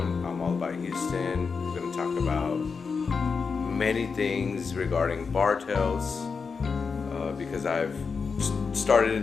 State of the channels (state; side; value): quieter; right; 5.2 dB